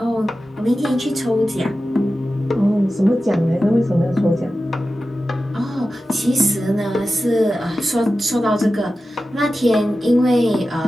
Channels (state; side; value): normal; both; correlation 0.93